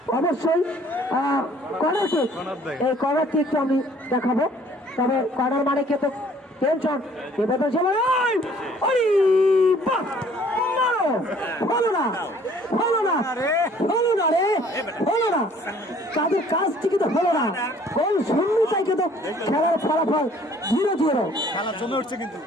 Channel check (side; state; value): both; normal; correlation 0.57